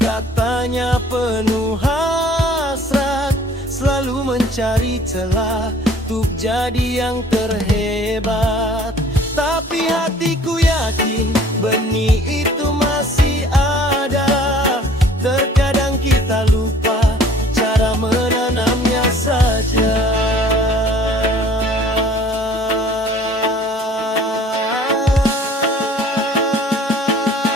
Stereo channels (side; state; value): both; normal; correlation 0.52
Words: penuh hasrat, selalu mencari celah untuk jadi yang terhebat. Tapi hatiku yakin benih itu masih ada. Terkadang kita lupa cara menanamnya saja.